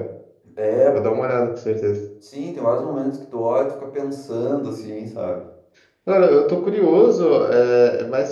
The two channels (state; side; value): identical; both; correlation 1.00